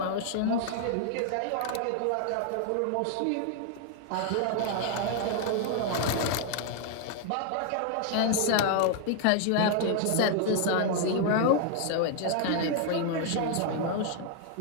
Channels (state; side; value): different; both; correlation 0.00